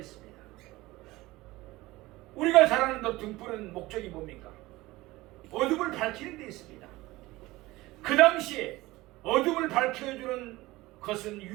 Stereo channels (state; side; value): quieter; left; 19.4 dB